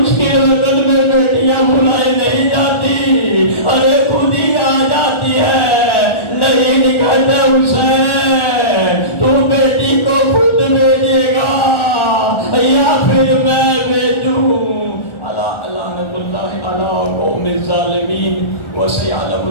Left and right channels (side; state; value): right; late; 1.4 ms